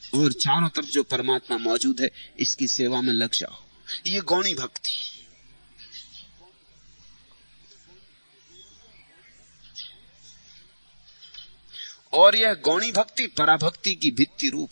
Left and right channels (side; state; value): both; inverted; correlation -1.00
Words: और चारों तरफ जो परमात्मा मौजूद है इसकी सेवा में लग जाओ। ये गौणी भक्ति। और यह गौणी भक्ति पराभक्ति की भित्ति